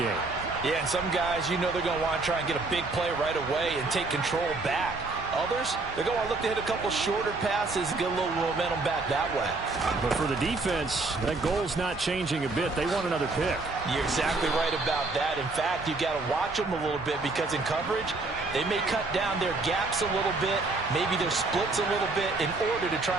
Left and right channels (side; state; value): left; quieter; 3.5 dB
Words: Yeah, and some guys, you know they're going to want to try and get a big play right away and take control back. Others, they're going to look to hit a couple shorter passes, get a little momentum back that way. But for the defense, that goal's not changing a bit. They want another pick. You're exactly right about that. In fact, you got to watch them a little bit because in coverage, they may cut down their gaps a little bit, maybe their splits a little bit in order to